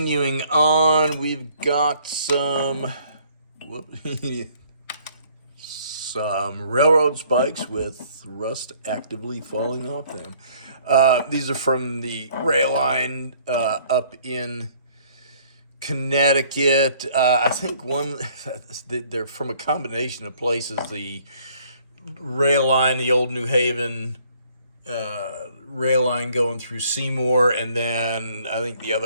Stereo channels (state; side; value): inverted; both; correlation -0.60